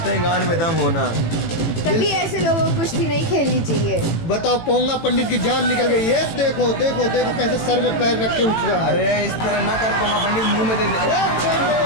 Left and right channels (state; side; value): late; right; 18 ms